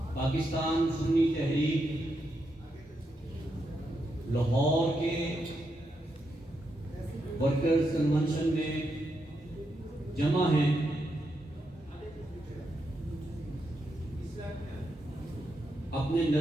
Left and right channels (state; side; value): normal; both; correlation 0.83